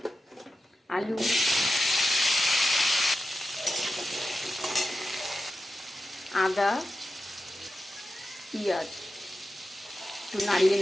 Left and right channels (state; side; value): normal; both; correlation 0.91